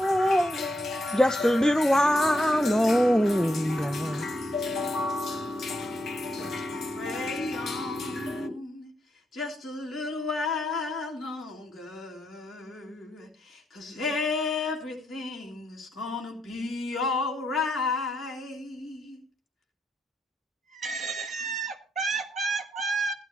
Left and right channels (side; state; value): both; normal; correlation 0.80